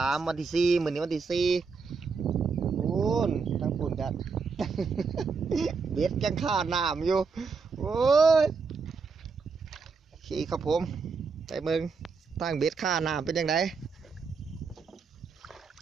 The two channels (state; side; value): quieter; left; 5.0 dB